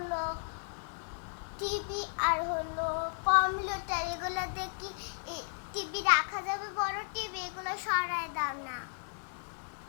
TV, আর হলো computer. এগুলো দেখি টিভি রাখা যাবে, বড় টিভি। এগুলো সরায় দাও না।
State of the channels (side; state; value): right; silent; digital silence